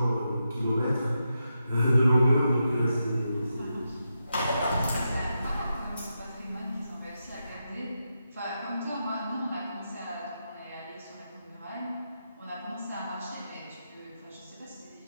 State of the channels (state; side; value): inverted; both; correlation -0.87